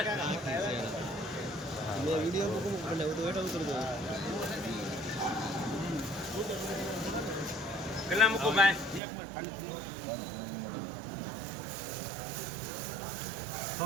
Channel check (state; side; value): drops out; left; at 9.0 s